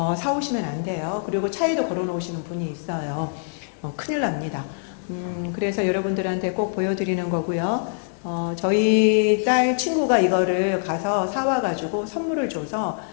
사오시면 안 돼요. 그리고 차에도 걸어 놓으시는 분이 있어요. 큰일 납니다. 그래서 여러분들한테 꼭 보여드리는 거고요. 저희 딸 친구가 이거를 가서 사와가지고 선물을 줘서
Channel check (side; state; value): right; silent; digital silence